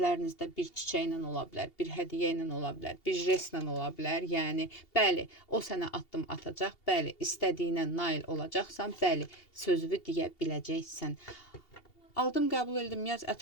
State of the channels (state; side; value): late; right; 2.8 ms